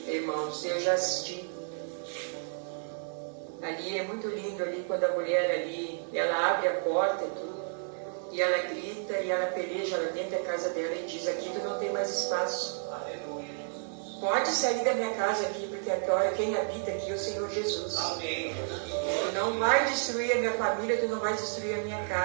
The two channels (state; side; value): silent; left; digital silence